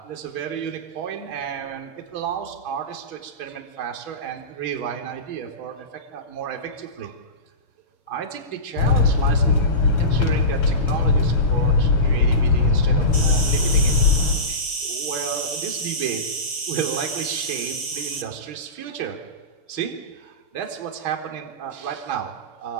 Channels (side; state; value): right; late; 6.6 ms